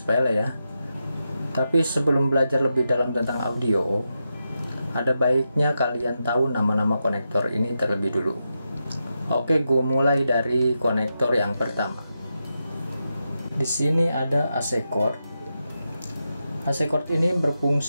ya. Tapi sebelum belajar lebih dalam tentang audio, ada baiknya kalian tahu nama-nama konektor ini terlebih dulu. Oke, gue mulai dari konektor yang pertama. Di sini ada AC cord. AC cord ini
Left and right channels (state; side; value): inverted; both; correlation -0.88